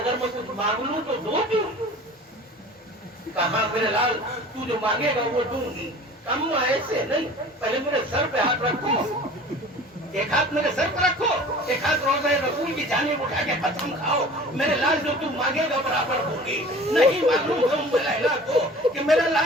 मैं कुछ मांग लूं तो दो दूं? कहा, मेरे लाल तू जो मांगेगा वो दूंगी। अम्मा ऐसे नहीं, पहले मेरे सर पे हाथ रखो, एक हाथ मेरे सर पे रखो, एक हाथ रोज़े रसूल की जानिब उठा के कसम खाओ, मेरे लाल जो तू मांगेगा बराबर होगी। नहीं मालूम है उम्मे लैला को कि मेरा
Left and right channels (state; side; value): normal; both; correlation 0.43